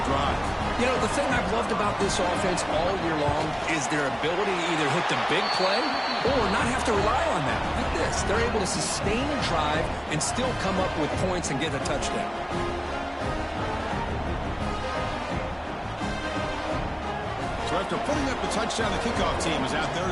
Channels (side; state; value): both; identical; correlation 1.00